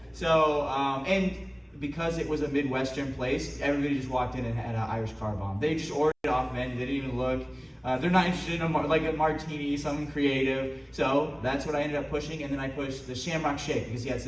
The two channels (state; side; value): identical; both; correlation 1.00